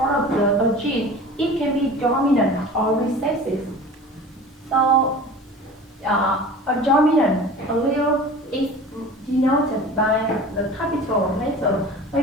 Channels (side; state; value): both; normal; correlation 0.39